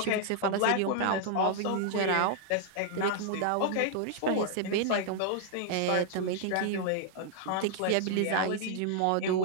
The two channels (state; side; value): different; both; correlation 0.00